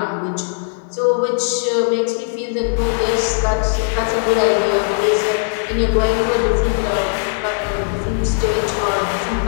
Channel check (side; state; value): right; silent; 58 dB below the other